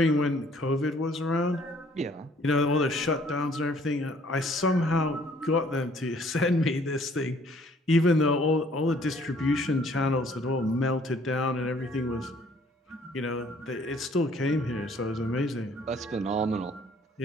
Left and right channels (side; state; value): both; normal; correlation 0.59